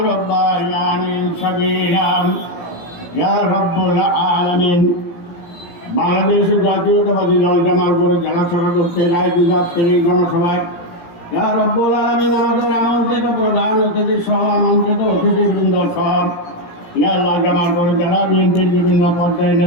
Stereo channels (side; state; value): right; late; 17 ms